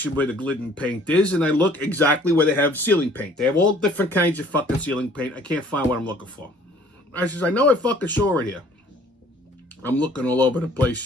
where the Glidden paint is, and I look exactly where they have ceiling paint. They have all different kinds of fucking ceiling paint. I can't find what I'm looking for. I says, I know I fucking saw it here. I'm looking all over the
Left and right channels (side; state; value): both; normal; correlation 0.55